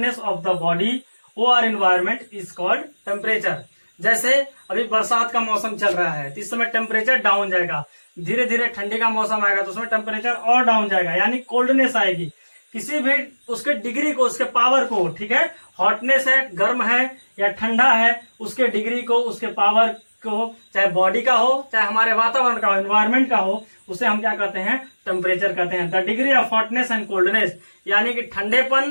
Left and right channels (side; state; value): both; inverted; correlation -1.00